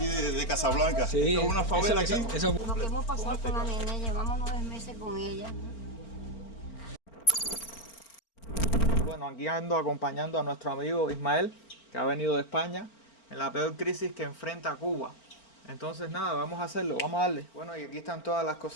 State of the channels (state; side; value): late; right; 4.4 ms